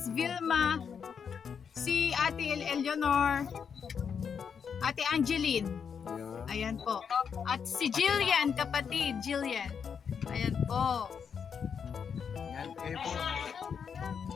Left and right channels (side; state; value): right; quieter; 6.8 dB